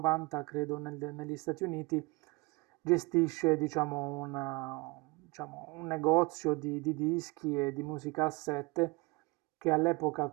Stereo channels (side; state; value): left; quieter; 25.9 dB